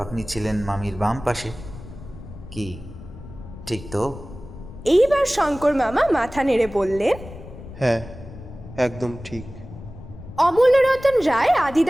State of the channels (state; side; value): noise; left; rumble, 15 dB below the sound